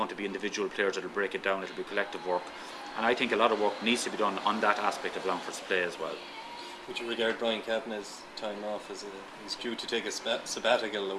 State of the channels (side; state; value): both; identical; correlation 1.00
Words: to be individual players that will break it down, it'll be collective work. And I think a lot of work needs to be done on that aspect of Longford's play as well. Would you regard Brian Kavanagh's time off as he's due to take a sabbatical, the